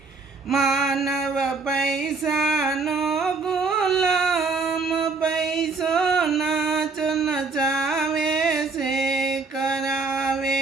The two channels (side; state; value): left; quieter; 4.2 dB